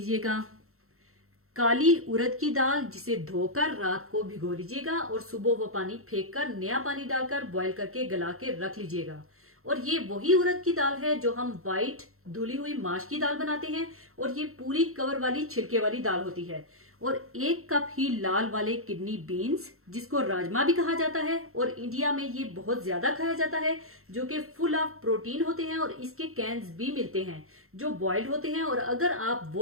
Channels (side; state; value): left; late; 0.63 ms